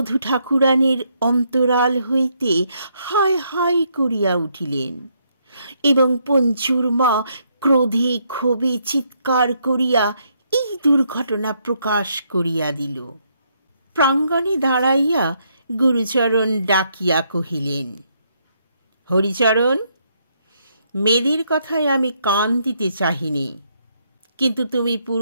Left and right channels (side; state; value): both; inverted; correlation -0.74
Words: ঠাকুরানীর অন্তরাল হইতে হায় হায় করিয়া উঠিলেন এবং পঞ্চুর মা ক্রোধে ক্ষোভে চিৎকার করিয়া এই দুর্ঘটনা প্রকাশ করিয়া দিল। প্রাঙ্গণে দাঁড়াইয়া গুরুচরণ ডাকিয়া কহিলেন, হরিচরণ, মেয়েদের কথায় আমি কান দিতে চাহিনি, কিন্তু তুমি